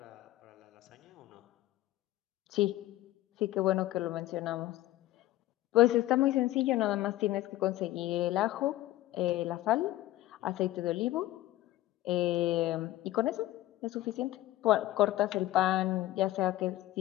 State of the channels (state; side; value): quieter; right; 15.8 dB